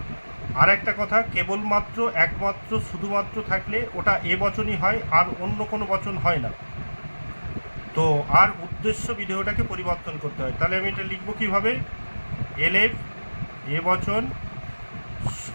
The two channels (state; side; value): inverted; both; correlation -1.00